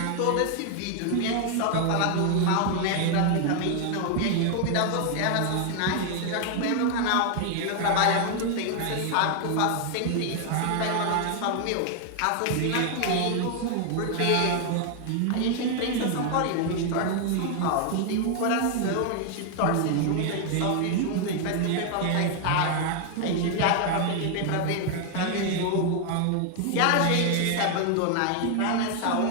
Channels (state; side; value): different; both; correlation 0.00